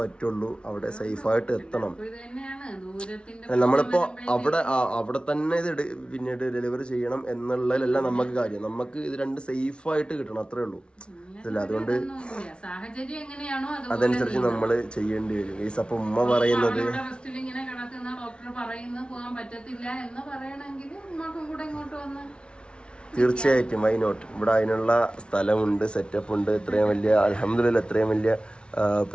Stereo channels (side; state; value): right; late; 0.057 ms